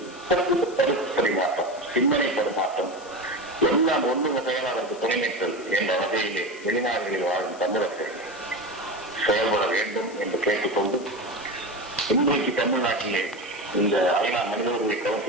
கருத்து பரிமாற்றம், சிந்தனை பரிமாற்றம் எல்லாம் ஒன்று வகையால் அதற்கு துணைநிற்றல் என்ற வகையிலே வெளிநாடுகளில் வாழும் தமிழர்கள் செயல்பட வேண்டும் என்று கேட்டுக்கொண்டு, இன்றைக்கு தமிழ்நாட்டிலே இந்த ஐநா மனித உரிமை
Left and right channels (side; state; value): left; noise; hiss, 21 dB below the sound